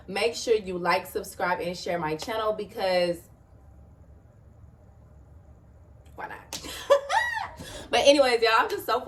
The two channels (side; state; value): both; identical; correlation 1.00